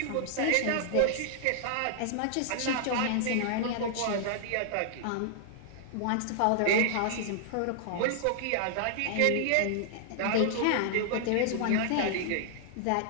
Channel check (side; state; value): both; different; correlation -0.01